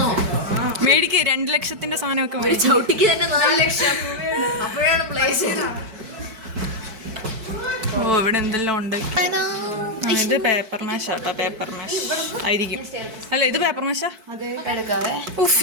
മേടിക്ക് 2 ലക്ഷത്തിന്റെ സാധനമൊക്കെ ഒരു ചവിട്ടിക്ക് തന്നെ 4 ലക്ഷം അപ്പോഴാണ് പ്ലേസ്. ഓ ഇവിടെ എന്തെല്ലാം ഉണ്ട്. ഇത് പേപ്പർ മാഷ് ആട്ടോ, പേപ്പർ മാഷ് ആയിരിക്കും. അല്ല ഇത് പേപ്പർ മാഷാ. ഉഫ്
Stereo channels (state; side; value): late; left; 4.6 ms